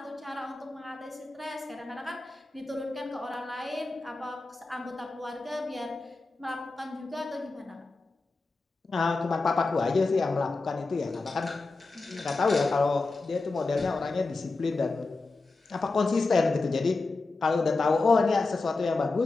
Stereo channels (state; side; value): quieter; right; 3.6 dB